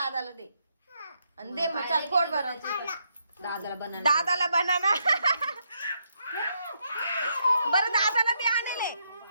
दे आणि दे मग चल पोट भरून दादाला बनाना दादाला बनाना बरं दादाला बी आणले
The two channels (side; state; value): both; inverted; correlation -0.78